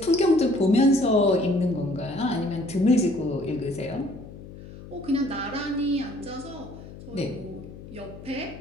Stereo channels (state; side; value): noise; left; hum, 15 dB below the sound